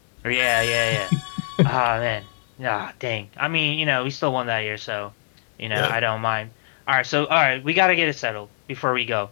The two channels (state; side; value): silent; right; digital silence